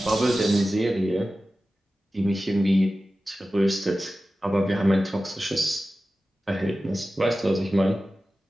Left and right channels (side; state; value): both; normal; correlation 0.95